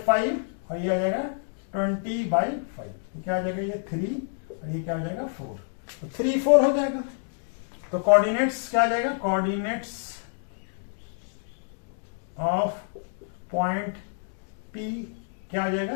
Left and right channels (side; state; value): right; silent; digital silence